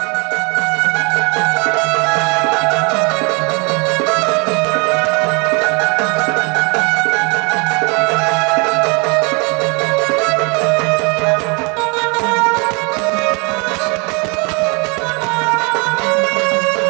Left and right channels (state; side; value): quieter; left; 31.3 dB